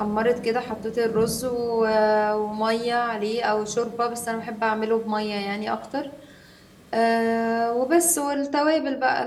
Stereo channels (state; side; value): identical; both; correlation 1.00